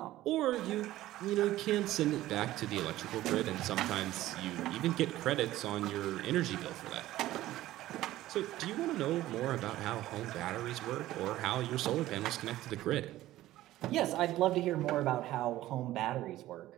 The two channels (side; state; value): left; quieter; 15.3 dB